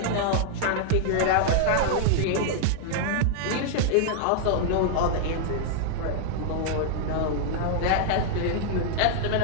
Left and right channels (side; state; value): both; different; correlation -0.01